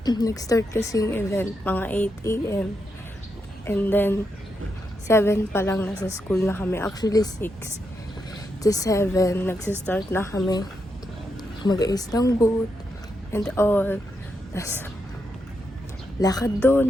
nag-start kasi yung event, mga 8 a.m. And then, 7 pa lang nasa school na kami. Actually, 6 to 7, nagsistart na kami mag-ayos ng booth and all. Tas, lakad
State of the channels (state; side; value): normal; both; correlation 0.83